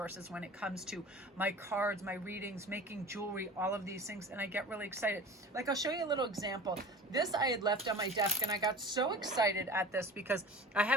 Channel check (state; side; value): normal; both; correlation 0.38